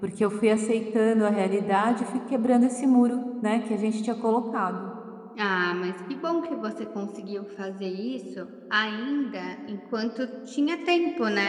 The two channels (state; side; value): identical; both; correlation 1.00